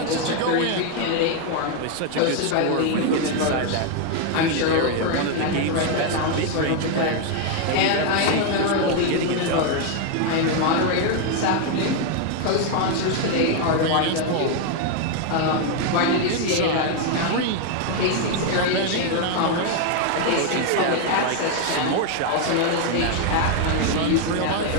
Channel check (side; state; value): both; different; correlation 0.00